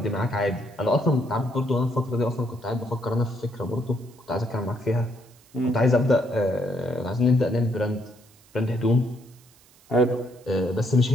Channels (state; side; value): noise; right; hiss, 28 dB below the sound